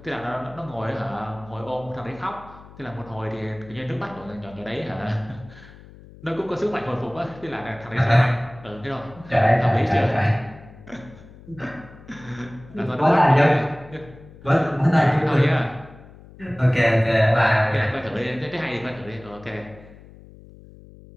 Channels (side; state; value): left; noise; hum, 20 dB below the sound